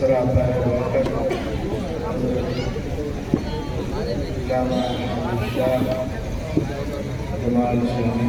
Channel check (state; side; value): identical; both; correlation 1.00